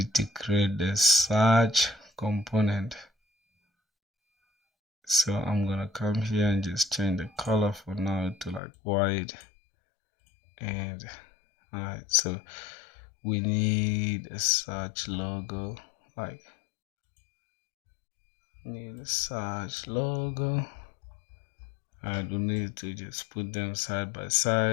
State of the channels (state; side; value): drops out; right; at 8.6 s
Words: to create the search component. So I'm gonna come here and just change the color for now to like white. And alright, so we need a search logo, like need a search logo. I do need to just put them side by